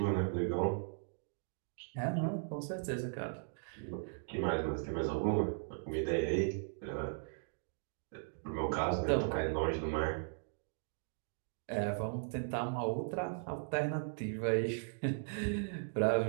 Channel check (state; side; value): silent; left; digital silence